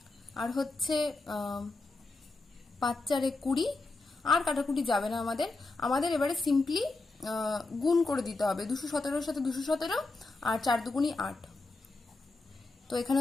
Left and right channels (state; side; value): quieter; right; 3.4 dB